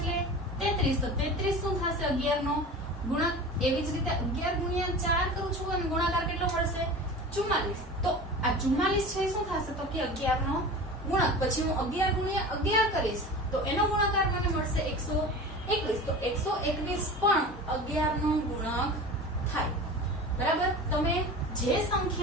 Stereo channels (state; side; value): normal; both; correlation 0.34